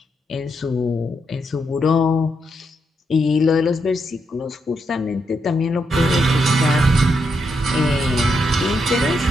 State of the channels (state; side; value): normal; both; correlation 0.80